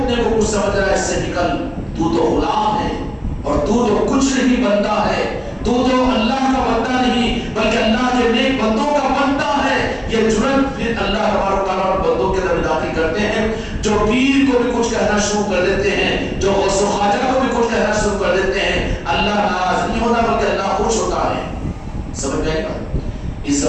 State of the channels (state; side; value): identical; both; correlation 1.00